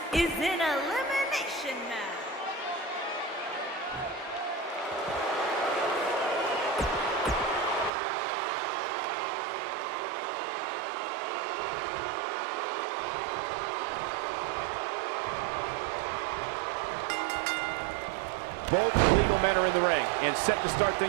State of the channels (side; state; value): left; drops out; at 7.9 s